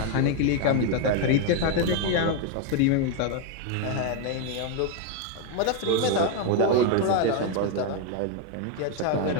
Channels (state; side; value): different; both; correlation 0.01